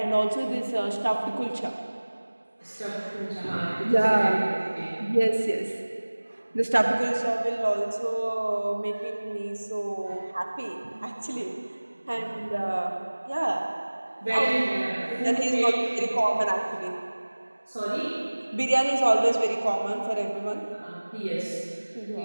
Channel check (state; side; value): inverted; both; correlation -1.00